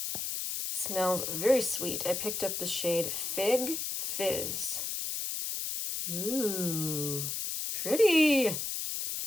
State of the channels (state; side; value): noise; left; hiss, 3 dB below the sound